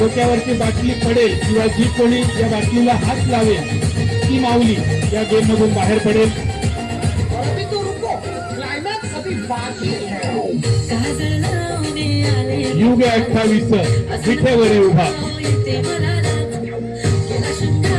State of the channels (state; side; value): identical; both; correlation 1.00